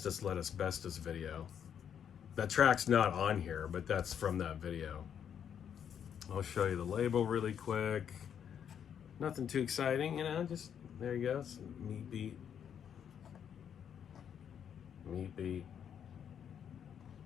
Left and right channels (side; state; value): right; quieter; 8.5 dB